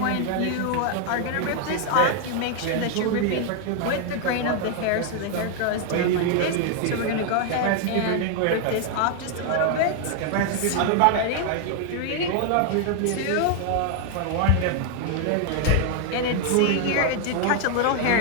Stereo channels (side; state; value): both; different; correlation 0.00